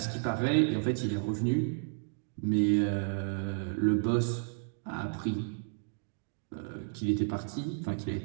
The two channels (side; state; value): left; silent; digital silence